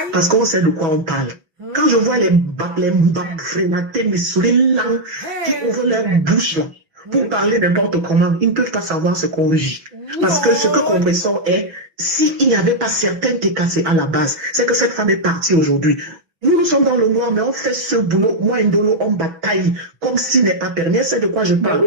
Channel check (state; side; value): late; left; 6.2 ms